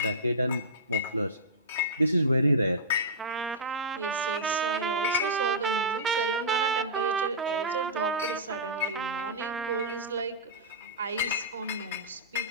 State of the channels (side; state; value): both; normal; correlation -0.18